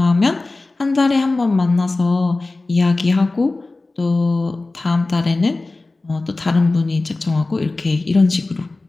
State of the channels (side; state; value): right; quieter; 3.2 dB